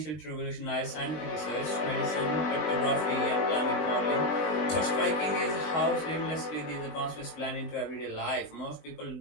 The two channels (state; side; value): late; right; 20 ms